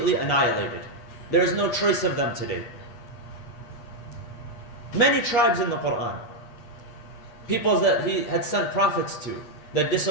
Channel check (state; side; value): late; right; 8.4 ms